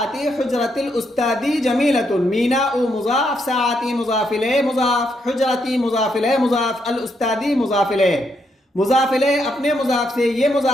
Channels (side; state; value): both; normal; correlation 0.77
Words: حجرت الاستادی جمیلۃ، میناء مضاف، ساعتی مضاف الیہ مضاف، حجرتی مضاف الیہ مضاف، الاستادی مضاف الیہ، مضاف الیہ اپنے مضاف سے، یہ